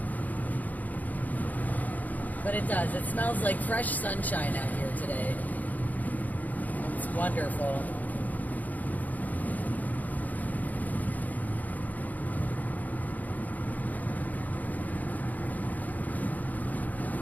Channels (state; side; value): late; right; 0.080 ms